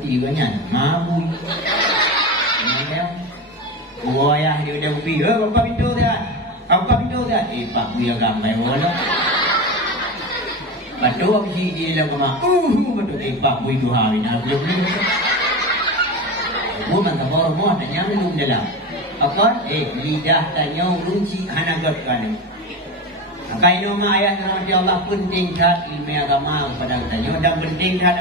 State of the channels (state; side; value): normal; both; correlation 0.23